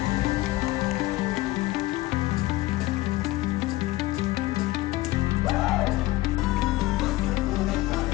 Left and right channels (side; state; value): right; quieter; 18.3 dB